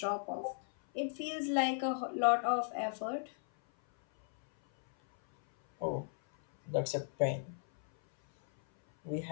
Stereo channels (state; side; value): silent; right; 54 dB below the other